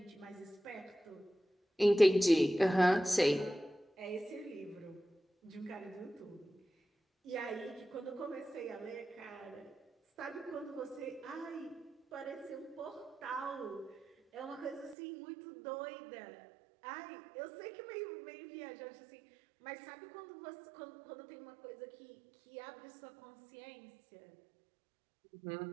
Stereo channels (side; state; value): left; drops out; at 15.0 s